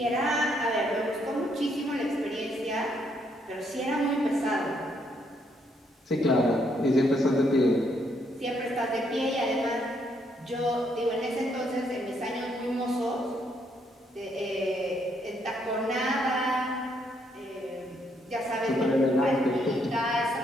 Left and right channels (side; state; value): both; normal; correlation 0.73